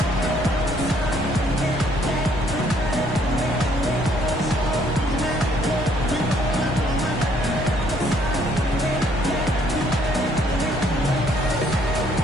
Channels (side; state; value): both; normal; correlation 0.65